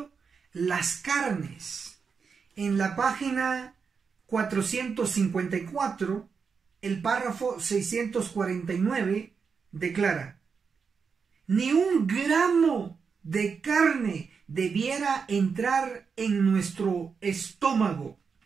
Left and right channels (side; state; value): left; quieter; 5.7 dB